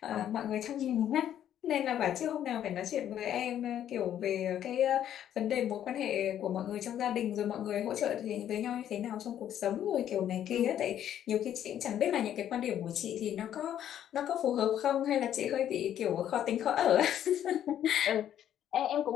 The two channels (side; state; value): right; quieter; 10.6 dB